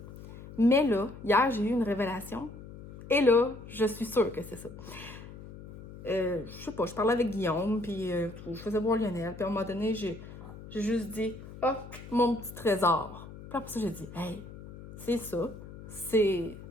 Mais là, hier, j'ai eu une révélation, et là, je suis sûre que c'est ça. Je sais pas, je parlais avec Guillaume, puis je faisais voir Lionel, puis à un moment donné, j'ai juste dit, mon petit trésor. Puis après ça, j'ai dit, hey, c'est ça, c'est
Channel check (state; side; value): noise; left; hum, 15 dB below the sound